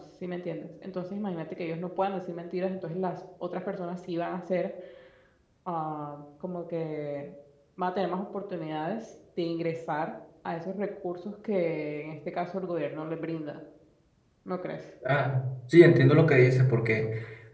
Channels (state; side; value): identical; both; correlation 1.00